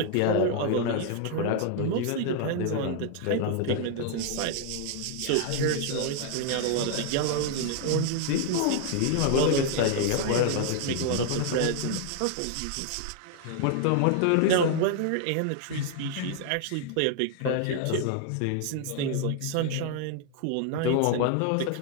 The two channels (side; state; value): both; different; correlation 0.00